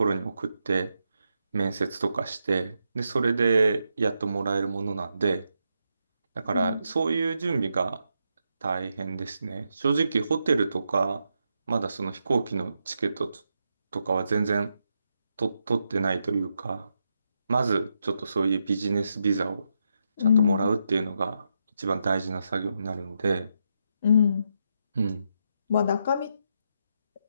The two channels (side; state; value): both; inverted; correlation -0.82